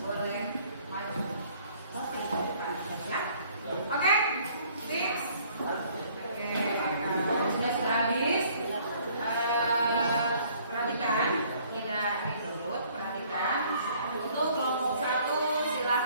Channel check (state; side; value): inverted; both; correlation -0.59